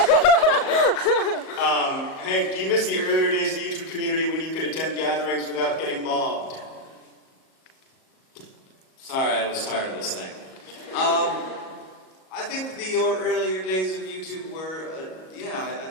Hank, do you miss the earlier days of the YouTube community when you could attend gatherings without getting mobbed? Sorry, I was tired of this thing. I think the earlier days of YouTube were, I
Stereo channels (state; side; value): late; right; 38 ms